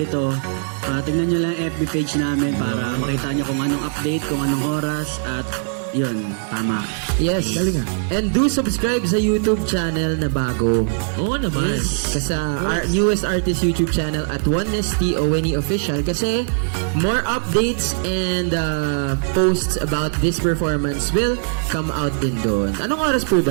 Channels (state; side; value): silent; left; 65 dB below the other